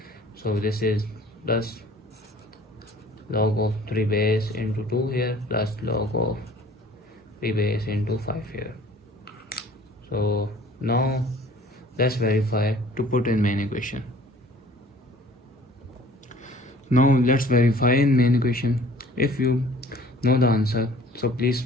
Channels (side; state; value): both; normal; correlation 0.51